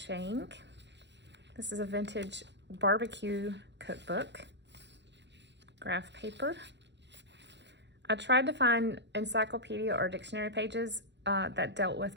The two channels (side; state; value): left; late; 0.51 ms